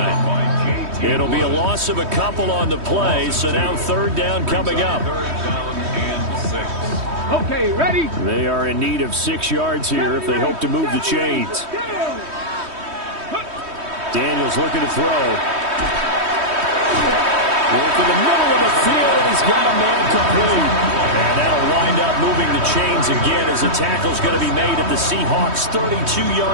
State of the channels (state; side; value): late; left; 3.2 ms